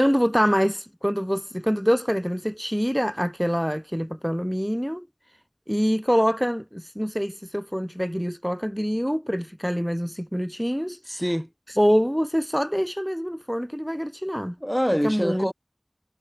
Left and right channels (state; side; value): identical; both; correlation 1.00